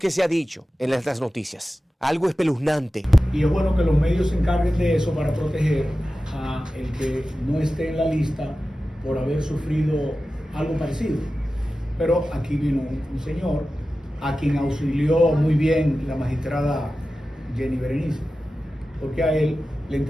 se ha dicho en las noticias. Algo espeluznante. Y es bueno que los medios se encarguen de eso para proteger a el que no esté en la lista por haber sufrido algo parecido. Pero aquí vino un señor a quien auxilió muy bien la magistrada Jenny Berenice, porque a él le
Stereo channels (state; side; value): normal; both; correlation 0.94